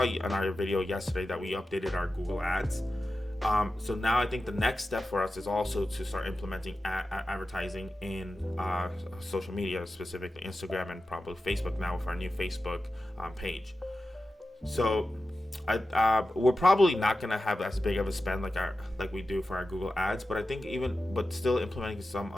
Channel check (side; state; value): both; normal; correlation 0.93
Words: in our video yesterday that we updated our Google Ads. So now I think the next step for us is also to start implementing advertising in social media, specifically Instagram and probably Facebook now with our new Facebook page. So we're probably not going to have as big of a spend like we do for our Google Ads, but I think but still implementing